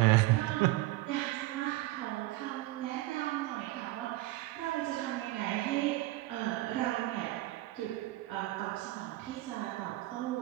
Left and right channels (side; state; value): left; quieter; 18.2 dB